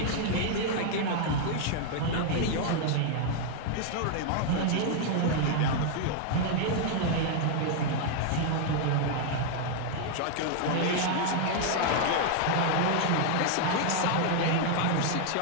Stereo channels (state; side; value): different; both; correlation 0.00